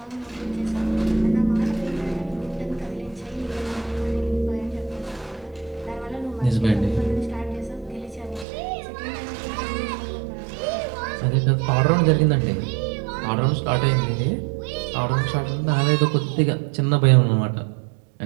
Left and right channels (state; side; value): drops out; left; at 8.5 s